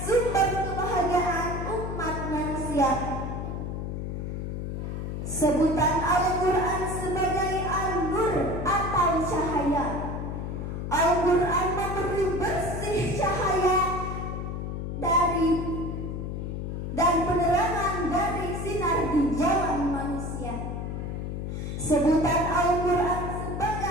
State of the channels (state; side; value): noise; left; hum, 4 dB below the sound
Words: kebahagiaan umat manusia. Sebutan Al-Quran sebagai An-Nur atau cahaya. Al-Quran memberi bersih cahaya dan penerangan dari sinar di jalan manusia. Sebutan Al-Quran